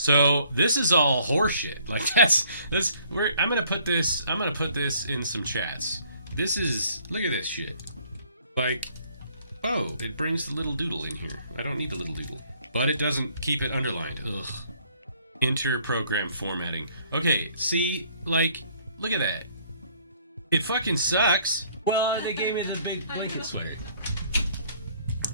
this is all horseshit. Like I'm gonna put this in some chats. This is, look at this shit. Like, oh, it brings the little doodle in here. I don't need the little doodle. But it doesn't keep it underlined. Ugh. Enter program formatting. Okay, see, like, look at that. It fucking sucks. Well, they gave me the big blanket swag.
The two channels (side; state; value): both; inverted; correlation -0.61